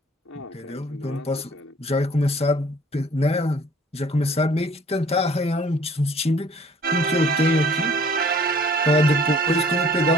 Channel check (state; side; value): normal; both; correlation 0.54